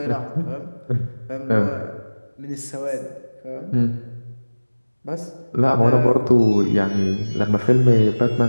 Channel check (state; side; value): inverted; both; correlation -1.00